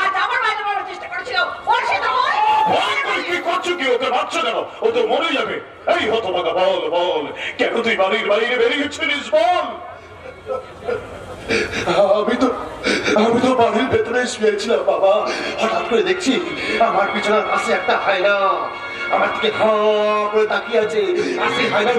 ও তো মরে যাবে। এই হতভাগা, বল বল কেন তুই বাড়ির বাইরে বেরিয়েছিলিস বল। আমি তো বাড়ির ভেতরে শুয়েছিলাম বাবা, হঠাৎ করে দেখছি আমার পিছনের পাশে একটা হায়না আমার দিকে করে তাকিয়ে আছে। আর সেই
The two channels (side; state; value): both; identical; correlation 1.00